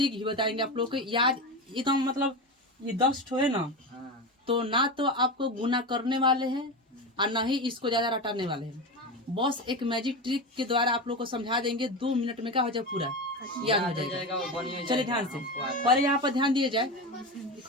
भी बताएंगे आप लोग को। याद एकदम मतलब ये 10 ठो है ना, तो ना तो आपको गुना करने वाले हैं और ना ही इसको ज्यादा रटाने वाले हैं। बस एक मैजिक ट्रिक के द्वारा आप लोग को समझा देंगे, 2 मिनट में क्या हो जाए, पूरा याद हो जाएगा। चलिए ध्यान से, पर यहाँ पर ध्यान दिए जाए।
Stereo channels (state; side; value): normal; both; correlation 0.21